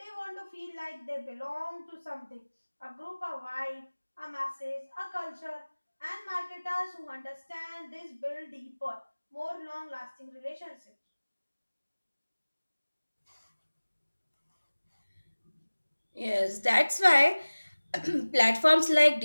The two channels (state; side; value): inverted; both; correlation -1.00